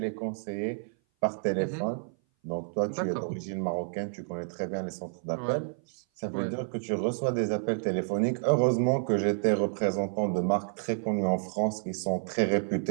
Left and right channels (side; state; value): left; silent; 56 dB below the other